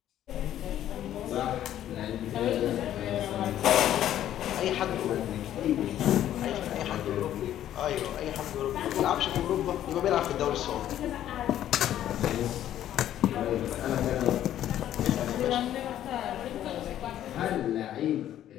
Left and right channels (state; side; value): quieter; right; 11.7 dB